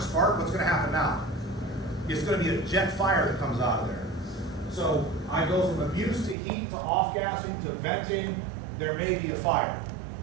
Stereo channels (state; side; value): drops out; left; at 6.4 s